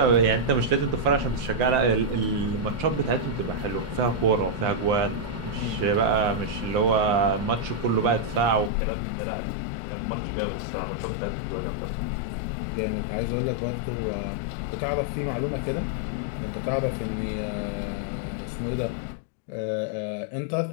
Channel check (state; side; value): drops out; right; at 8.7 s